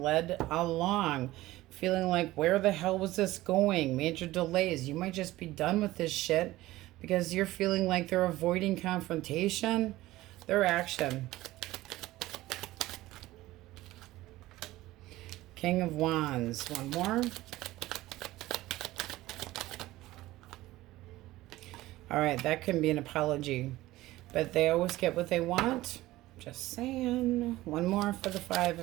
led along. Feeling like, where the hell was this going? Major delays. You might just be done with this shit because you're feeling like they're avoiding confrontation. Their action. King of Wands. One more. All right, that can be an apology, but they always get what they want. Just saying. One more for the Five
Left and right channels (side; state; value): left; quieter; 17.1 dB